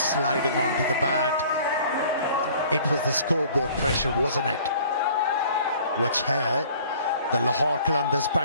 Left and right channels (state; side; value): inverted; both; correlation -0.52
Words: onto the bat. It was the scoreboard pressure, wasn't it? Which here, the Lahore Qalandars